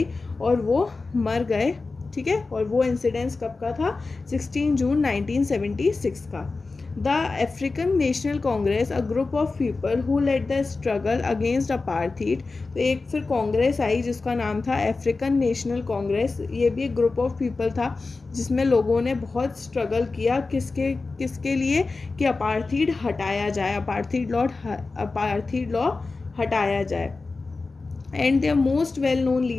और वो मर गए ठीक है, और वो इंसिडेंस कब का था? 16 जून 1976 का। The African National Congress, a group of people who led the struggle against apartheid. तो एक फिर कांग्रेस आई जिसका नाम था अफ्रीकन नेशनल कांग्रेस। ये भी एक ग्रुप ऑफ पीपल था जिसमें लोगों ने बहुत स्ट्रगल किया किसके किसके लिए, कि अपार्थीड हटाया जाए, अपार्थीड लॉ हटाया जाए। And their most well known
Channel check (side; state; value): right; quieter; 3.8 dB